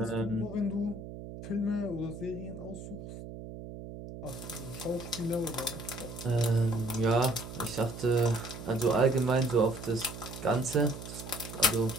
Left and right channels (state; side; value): noise; right; hum, 11 dB below the sound